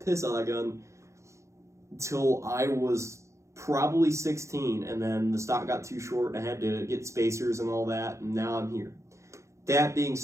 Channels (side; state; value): left; late; 0.14 ms